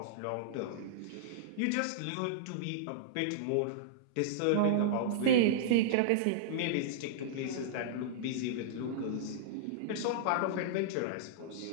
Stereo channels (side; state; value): both; different; correlation -0.02